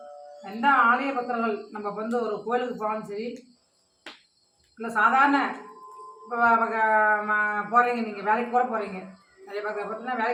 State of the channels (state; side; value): identical; both; correlation 1.00